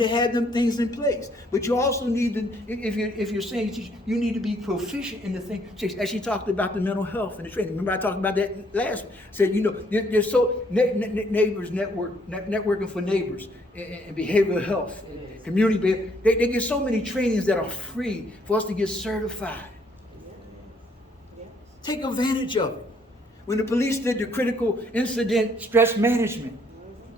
have them things in place. But you also need to, if you're saying you teach, you need to be proficient in the thing. As she talked about the mental health and the training. Remember I talked about that last week. Said, you know, there's so neighbors networking for neighbors and behavioral health, and community behavior. They get so many trainings that are free for us to get certified. Yeah. Take advantage of it. When the police did the critical incident stress management,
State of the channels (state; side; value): normal; both; correlation 0.67